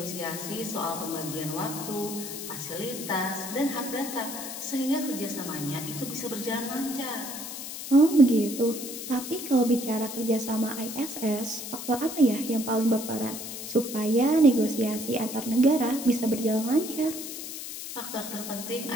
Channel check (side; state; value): left; noise; hiss, 8 dB below the sound